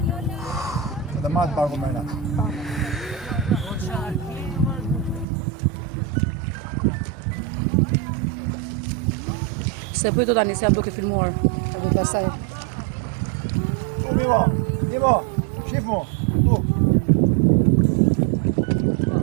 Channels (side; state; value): left; drops out; at 5.2 s